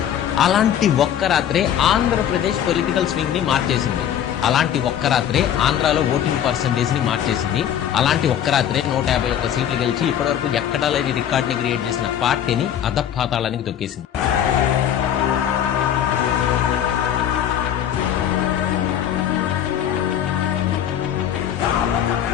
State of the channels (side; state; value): right; quieter; 9.9 dB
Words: అలాంటి ఒక్క రాత్రే ఆంధ్రప్రదేశ్ పొలిటికల్ స్వింగ్ ని మార్చేసింది. అలాంటి ఒక్క రాత్రే ఆంధ్రాలో ఓటింగ్ పర్సంటేజ్ ని మార్చేసింది. అలాంటి ఒక్క రాత్రే 151 సీట్లు గెలిచి ఇప్పటివరకు ఎక్కడా లేని రికార్డ్ ని క్రియేట్ చేసిన పార్టీని అధపాతాళానికి తొక్కేసింది.